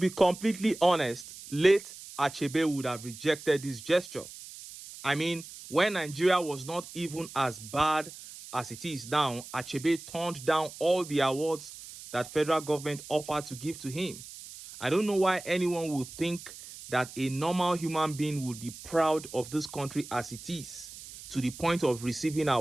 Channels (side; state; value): right; noise; hiss, 14 dB below the sound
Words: completely honest, late Achebe would have rejected this gesture. I mean, when Nigeria was not even as bad as it is now, Achebe turned down all the awards that federal government offered to give to him. I don't know why anyone would think that a normal human being would be proud of this country as it is, to the point of receiving